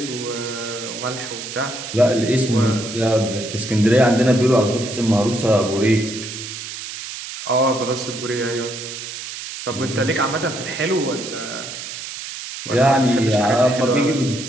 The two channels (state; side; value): noise; right; hiss, 9 dB below the sound